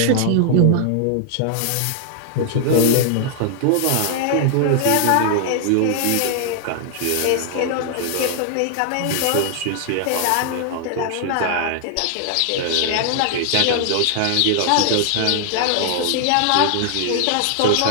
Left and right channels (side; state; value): both; different; correlation 0.00